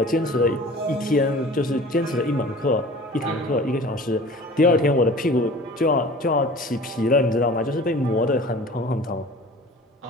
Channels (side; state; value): both; normal; correlation 0.43